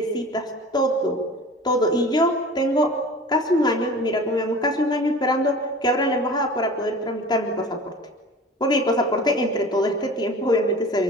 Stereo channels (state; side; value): normal; both; correlation 0.40